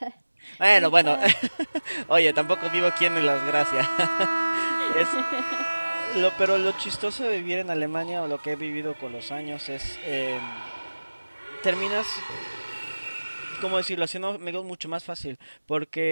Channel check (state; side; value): inverted; both; correlation -1.00